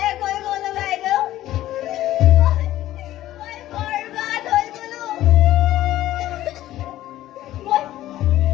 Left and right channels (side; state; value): right; quieter; 14.3 dB